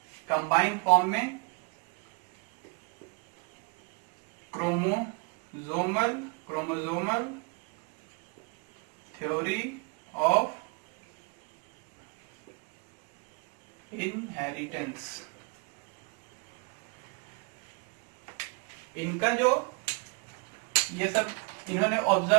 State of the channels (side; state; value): left; quieter; 32.5 dB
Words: कंबाइन फॉर्म में क्रोमोसोमल थ्योरी ऑफ इनहेरिटेंस। इनका जो ये सब इन्होंने